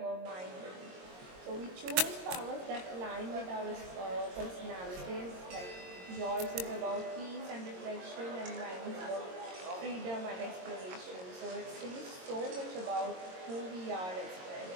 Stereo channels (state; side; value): late; left; 22 ms